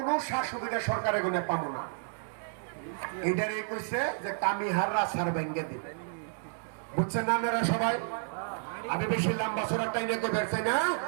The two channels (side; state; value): left; silent; digital silence